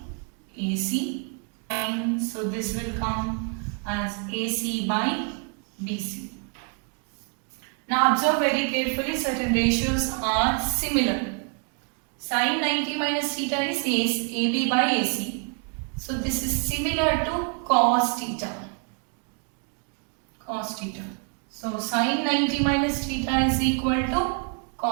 AC, and so this will come as AC by BC. Now observe very carefully, certain ratios are similar. Sin 90 minus theta is AB by AC. So this is similar to cos theta. Cos theta. So sin 90 minus theta is equal to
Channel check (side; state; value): left; quieter; 38.0 dB